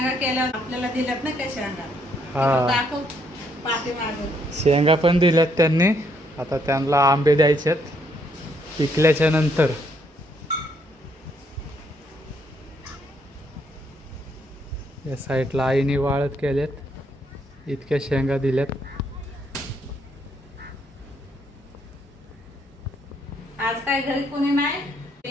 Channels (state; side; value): normal; both; correlation 0.72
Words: केल्या आपल्याला दिल्यात ना काय शेंगा. हा. दाखव पाठीमागे. शेंगा पण दिल्यात त्यांनी. आता त्यांना आंबे द्यायचेत पिकल्याच्या नंतर. या साईडला आईने वाळत केल्यात. इतक्या शेंगा दिल्यात. आज काय घरी कोणी नाही.